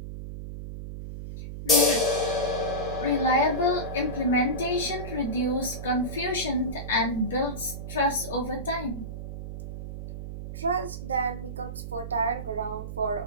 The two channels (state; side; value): noise; right; hum, 8 dB below the sound